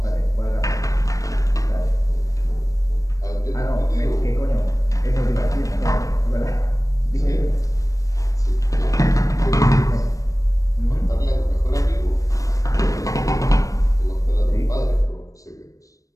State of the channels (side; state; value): right; late; 0.16 ms